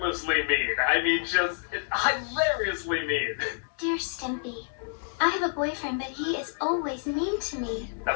mean. I mean, just hilariously mean. Dear Stimpy, I have a boyfriend, but he is always mean to me. A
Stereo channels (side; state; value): right; silent; 59 dB below the other